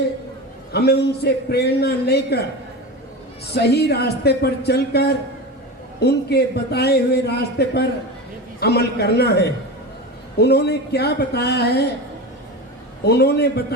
हमें उनसे प्रेरणा लेकर सही रास्ते पर चलकर उनके बताए हुए रास्ते पर अमल करना है। उन्होंने क्या बताया है? उन्होंने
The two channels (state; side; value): normal; both; correlation 0.26